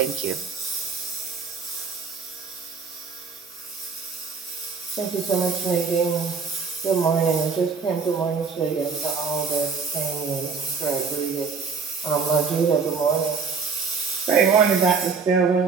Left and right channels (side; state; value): left; quieter; 5.3 dB